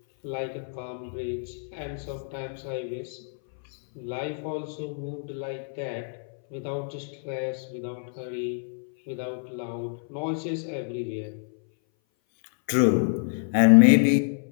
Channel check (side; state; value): right; silent; 58 dB below the other